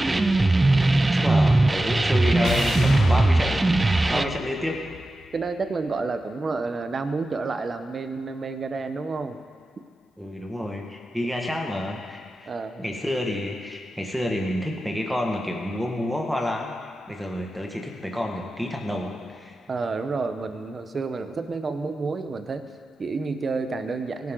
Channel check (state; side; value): normal; both; correlation 0.93